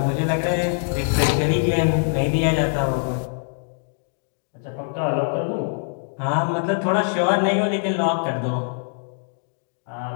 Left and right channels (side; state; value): right; silent; digital silence